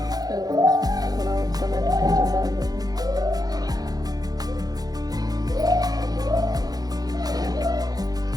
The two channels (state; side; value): late; left; 0.19 ms